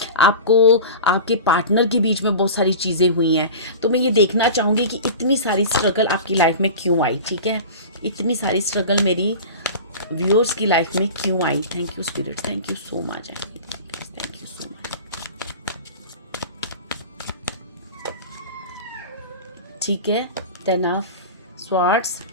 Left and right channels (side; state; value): both; inverted; correlation -0.34